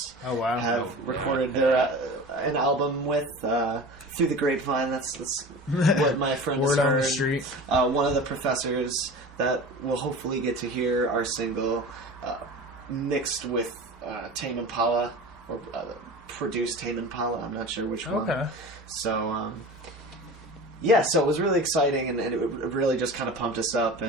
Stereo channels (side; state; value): both; normal; correlation 0.35